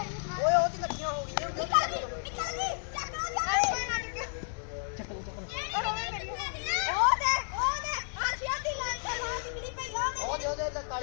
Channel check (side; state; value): right; silent; 57 dB below the other